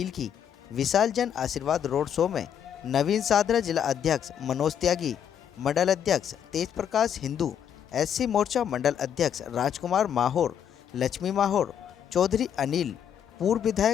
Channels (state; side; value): quieter; right; 8.8 dB